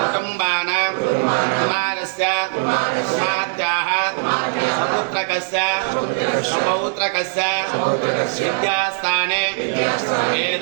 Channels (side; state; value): left; silent; 66 dB below the other